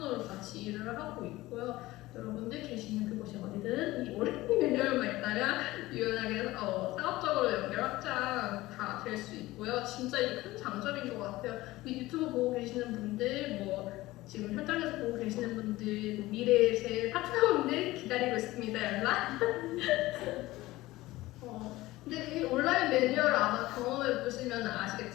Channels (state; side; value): quieter; right; 18.2 dB